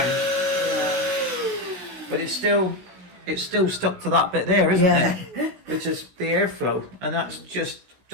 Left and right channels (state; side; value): late; left; 16 ms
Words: Yeah. But it's still stuck to that bit there, isn't it? Which is the airflow. And that's just